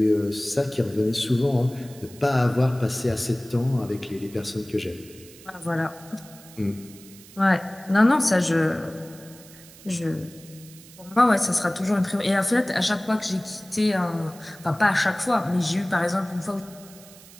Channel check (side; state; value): right; noise; hiss, 21 dB below the sound